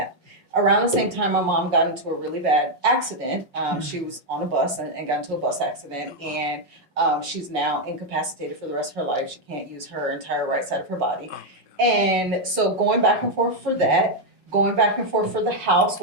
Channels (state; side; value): late; left; 5.4 ms